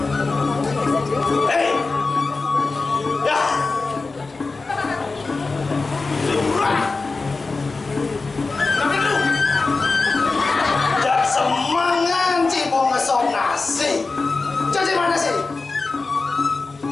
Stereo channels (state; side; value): quieter; right; 3.9 dB